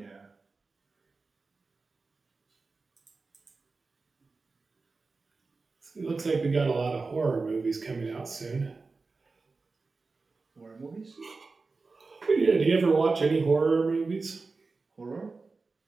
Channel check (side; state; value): left; quieter; 4.0 dB